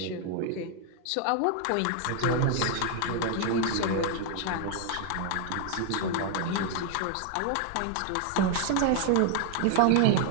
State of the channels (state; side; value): different; both; correlation 0.00